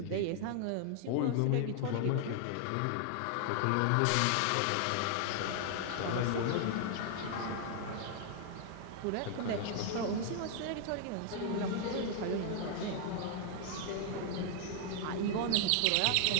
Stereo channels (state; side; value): different; both; correlation 0.00